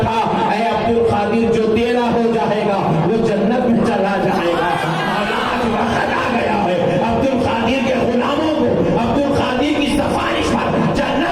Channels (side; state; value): both; identical; correlation 1.00